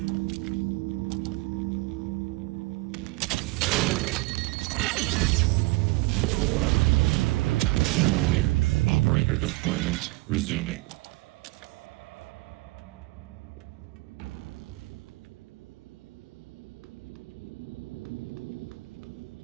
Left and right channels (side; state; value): left; quieter; 23.4 dB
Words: Operator deployment resuming.